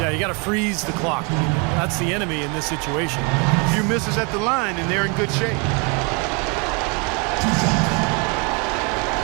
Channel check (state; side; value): quieter; left; 32.7 dB